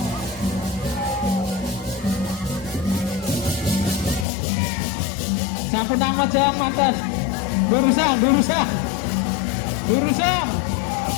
Sampun nang jawab mantan. Durusan.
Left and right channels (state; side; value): drops out; right; at 4.2 s